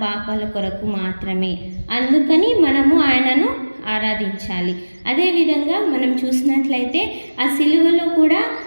పాపాల కొరకు మాత్రమే. అందుకని మనము ఆయనను ఆరాధించాలి. అదేవిధంగా మనం చూసినట్లయితే ఆ సిలువలో కూడా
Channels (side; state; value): both; inverted; correlation -1.00